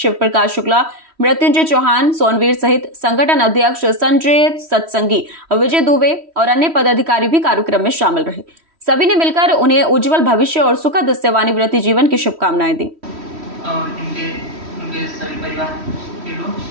प्रकाश शुक्ला, मृत्युंजय चौहान, सोनवीर सहित संगठन अध्यक्ष संजय सत्संगी, विजय दुबे और अन्य पदाधिकारी भी कार्यक्रम में शामिल रहे। सभी ने मिलकर उन्हें उज्जवल भविष्य और सुखद सेवानिवृत्ति जीवन की शुभकामनाएं दी। और उनके सभी परिवार के लोग,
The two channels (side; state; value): left; late; 3.1 ms